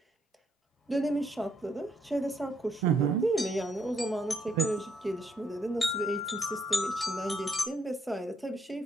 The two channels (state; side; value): normal; both; correlation 0.72